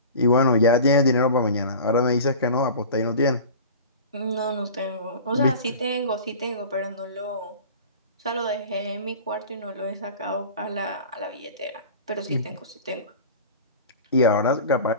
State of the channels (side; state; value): both; inverted; correlation -0.38